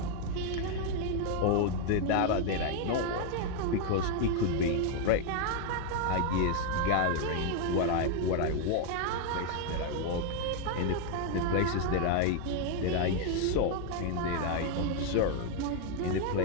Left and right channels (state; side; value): different; both; correlation 0.01